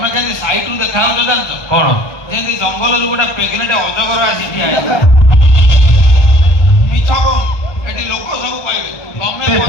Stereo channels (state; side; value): late; right; 1.3 ms